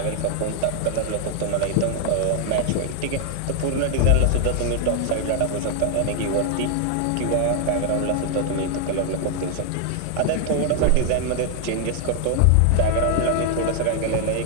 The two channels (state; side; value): different; both; correlation 0.00